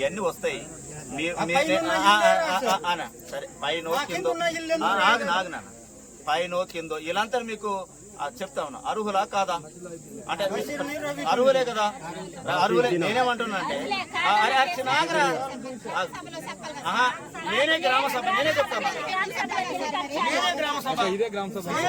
వస్తాయి. సరే పైన కిందో నాన్న పైన కిందో ఇలాంతా మీకు చెప్తా ఉన్నా. అర్హులా కాదా అంటే అర్హులే కదా, అర్హులే. నేనేమంటున్నా అంటే నేనే గ్రామ సభ, నేనే చెప్తాను, నేనే గ్రామ సభ, ఇదే గ్రామ సభ.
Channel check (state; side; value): identical; both; correlation 1.00